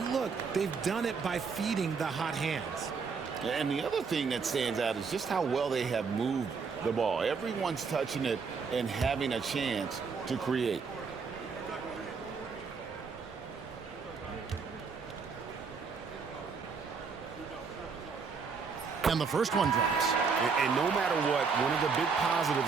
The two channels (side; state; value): left; quieter; 5.4 dB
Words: look, they've done it by feeding the hot hands. And the other thing that stands out is just how well they have moved the ball. Everyone's touching it and having a chance to create. And the first one drops. And no matter what, one of the big